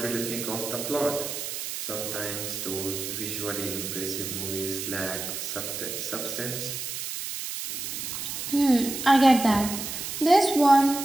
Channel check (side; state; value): right; noise; hiss, 5 dB below the sound